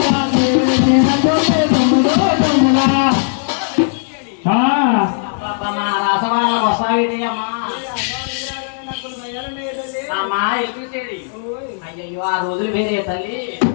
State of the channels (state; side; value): silent; right; digital silence